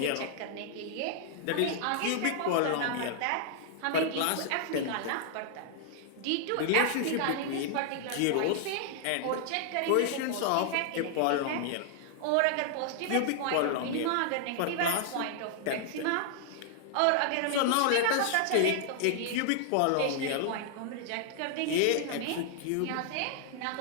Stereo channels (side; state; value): both; different; correlation 0.00